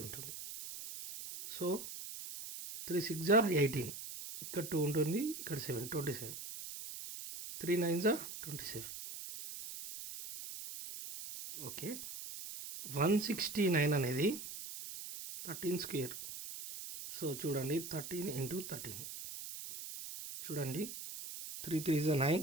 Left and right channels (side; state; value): right; noise; hiss, 9 dB below the sound